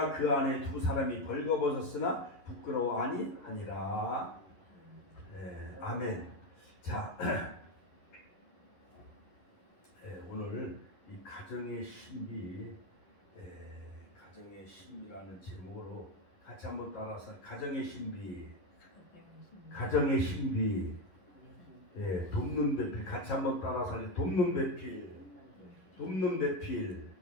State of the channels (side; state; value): right; late; 11 ms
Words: 그 아내 두 사람이 벌거벗었으나 부끄러워하니 하니라. 네, 아멘. 자, 오늘 이 가정의 신비, 가정의 신비라는 제목으로 같이 한번 따라서 가정의 신비, 가정의 신비, 돕는 배필 같이 한번 따라서 돕는 배필, 돕는 배필,